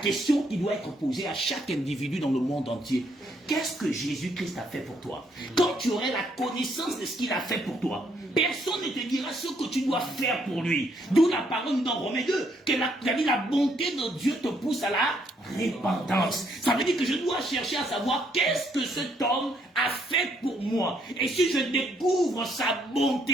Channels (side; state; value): both; normal; correlation 0.71